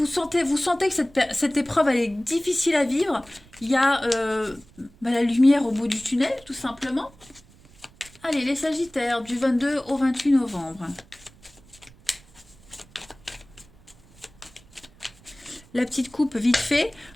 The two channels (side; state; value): right; noise; rumble, 26 dB below the sound